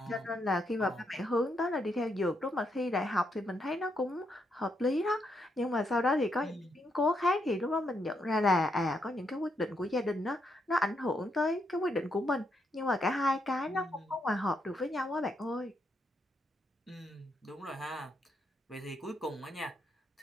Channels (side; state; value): both; normal; correlation 0.79